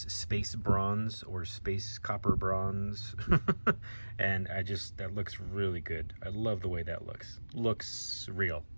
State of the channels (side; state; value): both; inverted; correlation -1.00